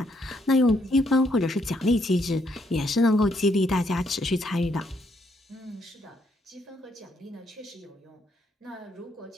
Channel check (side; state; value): both; normal; correlation 0.73